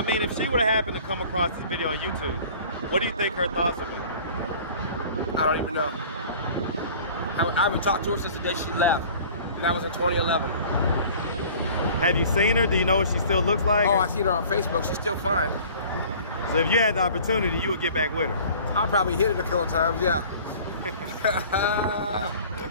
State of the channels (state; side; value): inverted; both; correlation -0.47